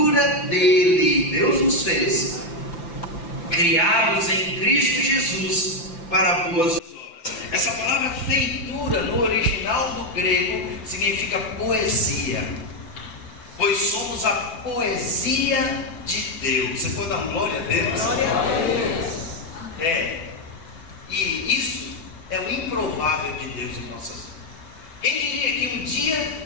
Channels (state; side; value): late; right; 5.9 ms